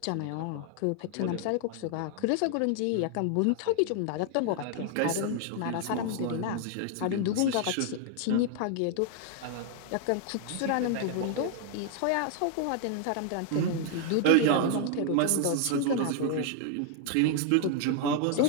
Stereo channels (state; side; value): different; both; correlation 0.00